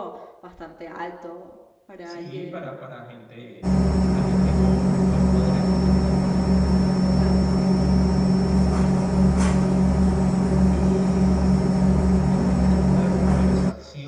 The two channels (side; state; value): both; identical; correlation 1.00